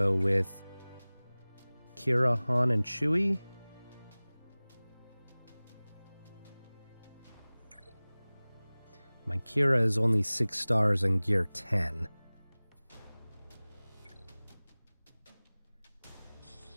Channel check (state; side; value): inverted; both; correlation -1.00